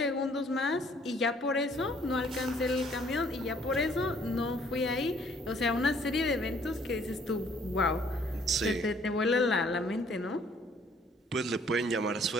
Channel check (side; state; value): both; normal; correlation 0.61